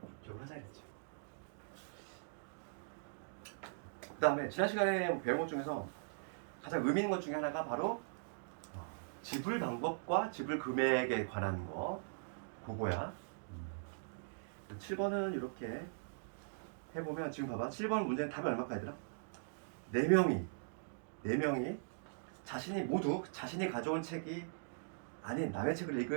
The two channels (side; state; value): left; silent; digital silence